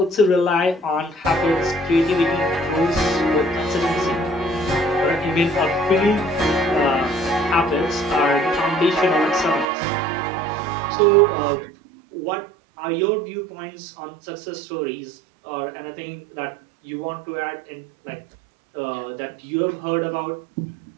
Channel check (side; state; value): left; drops out; at 9.7 s